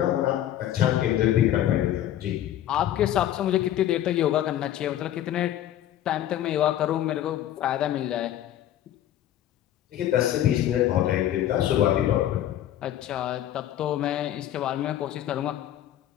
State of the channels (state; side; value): quieter; right; 12.0 dB